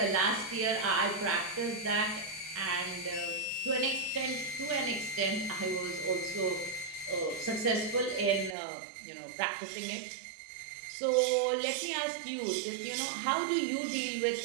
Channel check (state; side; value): drops out; left; at 8.6 s